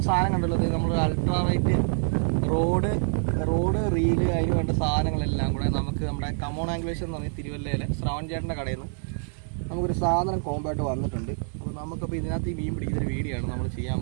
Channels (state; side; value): silent; left; 61 dB below the other